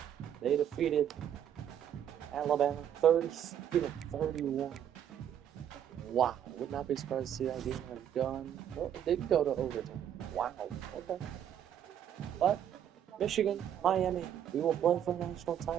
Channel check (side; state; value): left; quieter; 9.8 dB